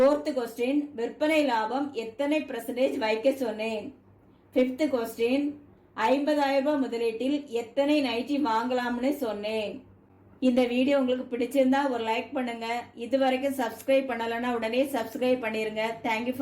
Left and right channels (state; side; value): identical; both; correlation 1.00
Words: கொஸ்டின், விற்பனை லாபம் எத்தனை % வைக்க சொன்னேன்? ஃபிஃப்த் கொஸ்டின், 50,000 ரூபாய் முதலீட்டில் எத்தனை நைட்டி வாங்கலாம்னு சொன்னேன். இந்த வீடியோ உங்களுக்கு பிடிச்சிருந்தா ஒரு லைக் பண்ணுங்க. இது வரைக்கும் சப்ஸ்கிரைப் பண்ணலன்னா உடனே சப்ஸ்கிரைப் பண்ணிருங்க. தேங்க்யூ